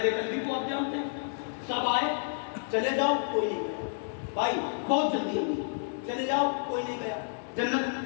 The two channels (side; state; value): right; silent; digital silence